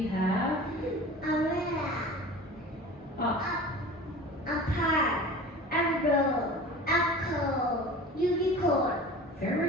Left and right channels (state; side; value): normal; both; correlation 0.38